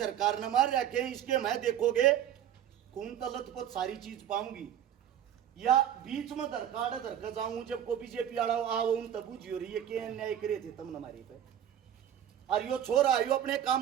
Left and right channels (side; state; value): left; quieter; 10.3 dB